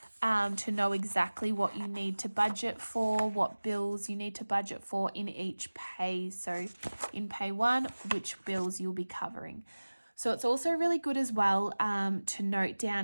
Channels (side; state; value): both; inverted; correlation -1.00